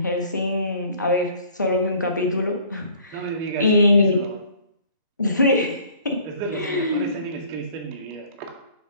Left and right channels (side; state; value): both; inverted; correlation -0.53